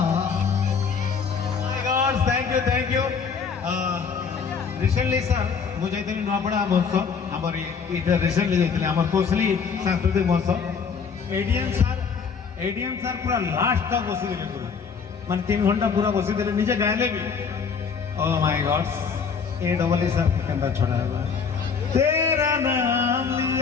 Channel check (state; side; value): quieter; right; 5.9 dB